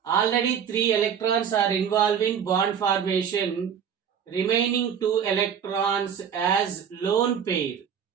Already 3 electrons are involved in bond formation. Remaining 2 electrons as lone pair.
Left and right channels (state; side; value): quieter; left; 7.9 dB